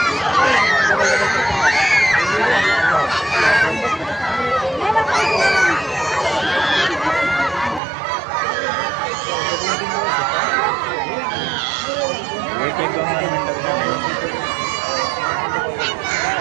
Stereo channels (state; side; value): drops out; left; at 7.8 s